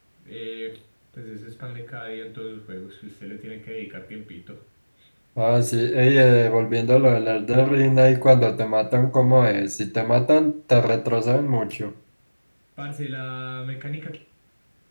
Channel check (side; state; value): both; inverted; correlation -1.00